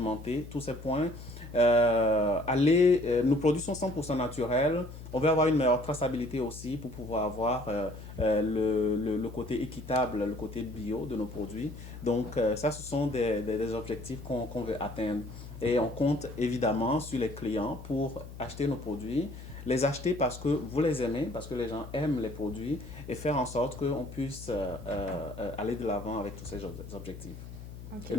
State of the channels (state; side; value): noise; left; hum, 13 dB below the sound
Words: tous ces points. Nos produits sont 100% naturels. On veut avoir une meilleure traçabilité aussi pour pouvoir avoir le côté équitable, le côté bio de nos produits. Donc, ça, ce sont des objectifs qu'on veut atteindre. Et on compte évidemment sur les clients pour acheter nos produits, les acheter parce que vous les aimez, parce que les gens aiment les produits et faire en sorte qu'on puisse aller de l'avant avec tous ces objectifs. Okay. Et